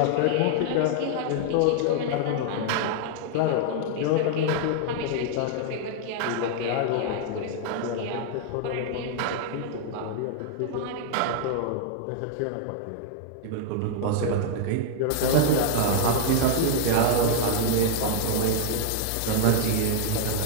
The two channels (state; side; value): different; both; correlation 0.00